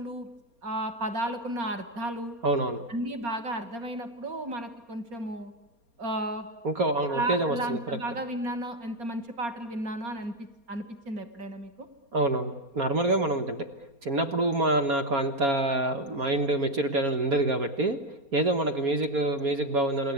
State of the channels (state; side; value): late; left; 4.3 ms